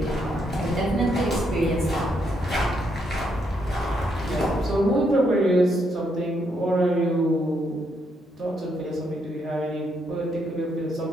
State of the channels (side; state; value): both; normal; correlation 0.76